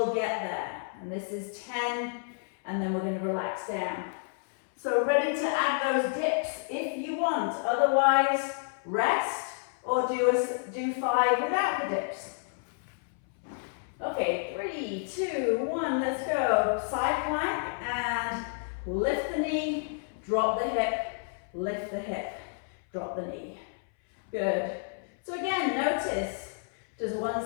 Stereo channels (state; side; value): silent; right; 58 dB below the other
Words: get there. And this is 10, and then we're going to relax down. So ready to add those dips if you want. Otherwise, rest or do 5 without the dips. Okay, 3, 2, 1, let's go. Side plank and lift the knee, drop the hip, lift the hip, drop the knee. Good. So again, notice, does